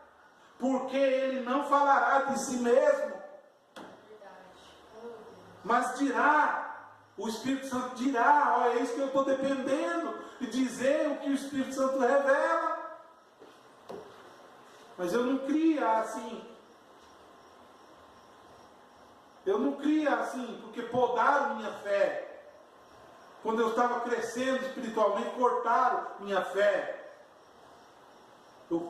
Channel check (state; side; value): identical; both; correlation 1.00